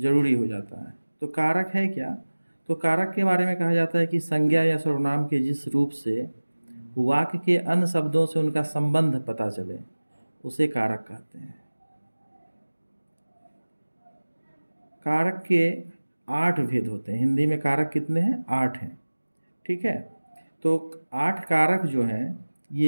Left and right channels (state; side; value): inverted; both; correlation -1.00